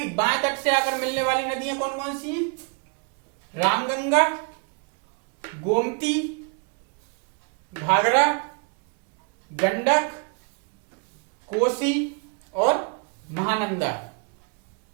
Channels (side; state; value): left; quieter; 37.3 dB